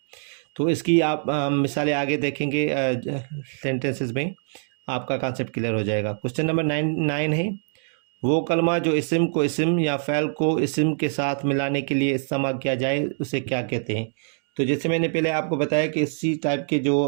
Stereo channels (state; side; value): silent; left; digital silence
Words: तो इसकी आप मिसालें आगे देखेंगे सेंटेंसेस में, आपका कॉन्सेप्ट क्लियर हो जाएगा। क्वेश्चन नंबर 9 है, वो कलमा जो इसम को इसम या फ़ैल को इसम के साथ मिलाने के लिए इस्तेमाल किया जाए उसे क्या कहते हैं। तो जैसे मैंने पहले आपको बताया कि इसी टाइप के जो